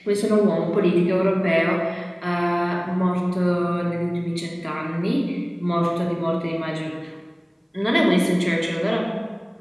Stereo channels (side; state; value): both; identical; correlation 1.00